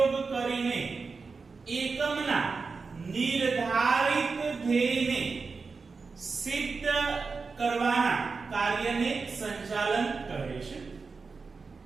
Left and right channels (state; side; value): quieter; left; 4.6 dB